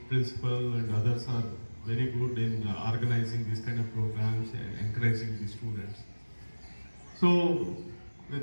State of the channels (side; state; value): both; inverted; correlation -1.00